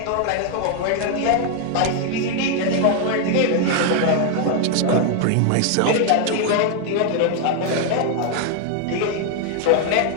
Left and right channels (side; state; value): both; different; correlation 0.00